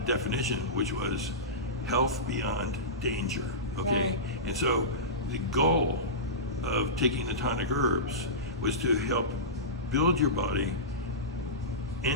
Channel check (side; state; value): both; normal; correlation -0.19